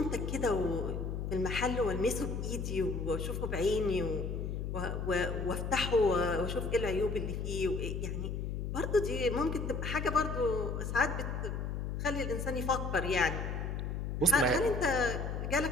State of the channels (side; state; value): left; noise; hum, 3 dB below the sound